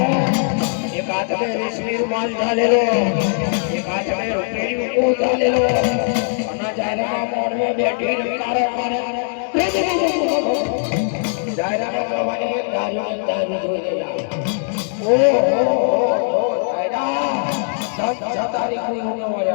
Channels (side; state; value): right; silent; digital silence